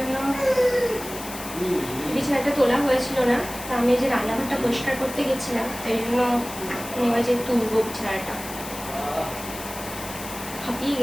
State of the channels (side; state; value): left; noise; hiss, 11 dB below the sound